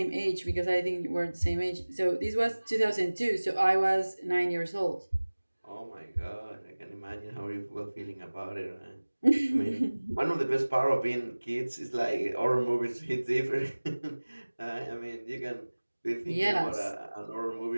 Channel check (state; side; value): inverted; both; correlation -1.00